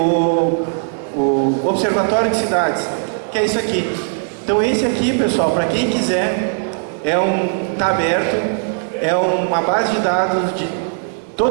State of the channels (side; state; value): left; silent; digital silence